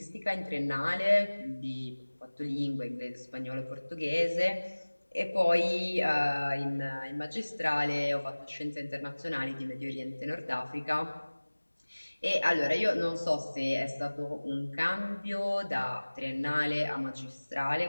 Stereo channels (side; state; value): both; inverted; correlation -1.00